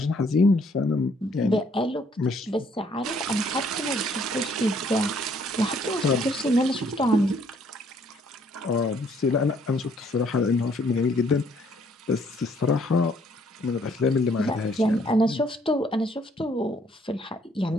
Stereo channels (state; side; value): normal; both; correlation 0.65